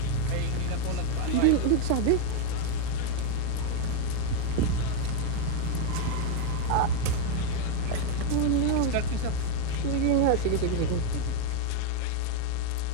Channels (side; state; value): both; different; correlation 0.01